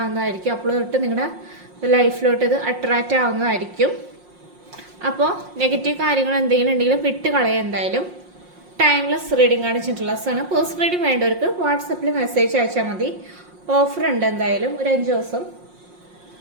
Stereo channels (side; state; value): left; late; 5.6 ms